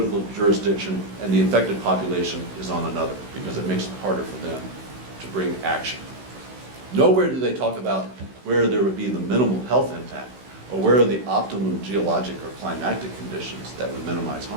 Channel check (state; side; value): late; left; 16 ms